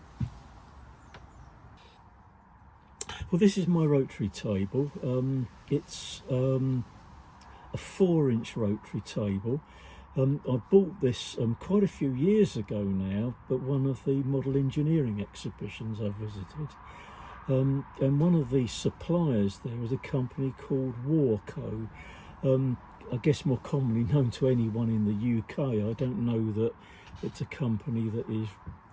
Well, this is my rotary table. It's a 4-inch rotary table. I bought this quite a few years ago now, but one of the model engineering exhibitions I visited. And one of the suppliers there was a company called Warco. I guess more commonly known to anyone in the UK. I don't know that it's a company that is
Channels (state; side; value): identical; both; correlation 1.00